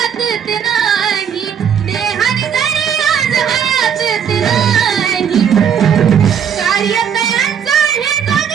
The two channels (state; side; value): quieter; left; 8.0 dB